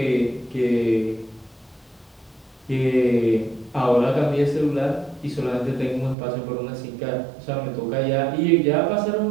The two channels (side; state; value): left; drops out; at 6.2 s